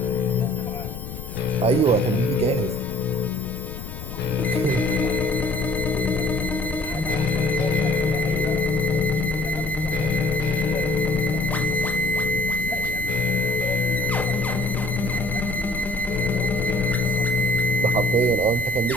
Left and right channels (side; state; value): left; noise; rumble, 10 dB below the sound